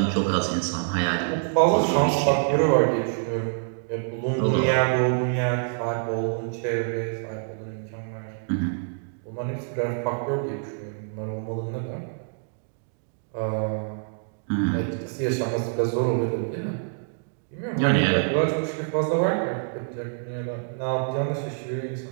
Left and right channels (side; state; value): left; silent; digital silence